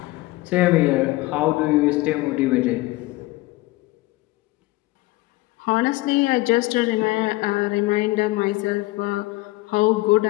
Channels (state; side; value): quieter; right; 20.2 dB